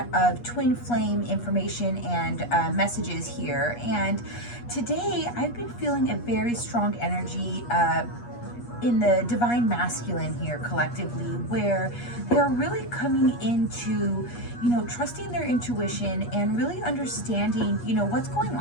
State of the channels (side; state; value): right; late; 8.4 ms